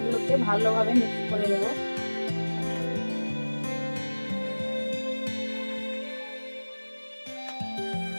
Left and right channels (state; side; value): inverted; both; correlation -1.00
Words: ভালোভাবে মিক্স করে নেবো।